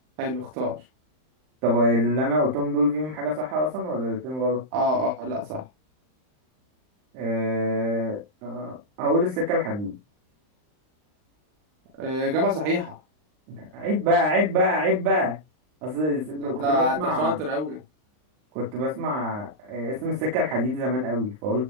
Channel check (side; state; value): left; late; 39 ms